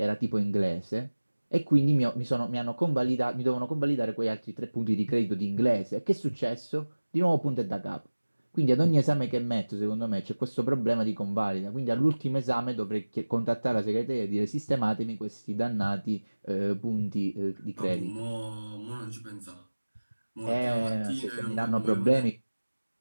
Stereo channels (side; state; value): both; inverted; correlation -1.00